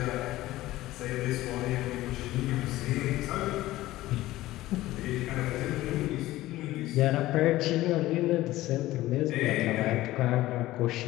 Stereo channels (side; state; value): right; quieter; 16.6 dB